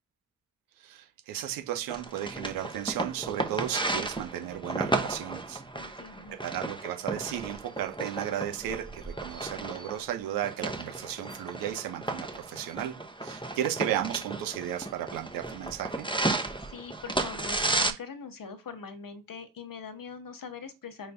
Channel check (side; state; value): left; quieter; 4.6 dB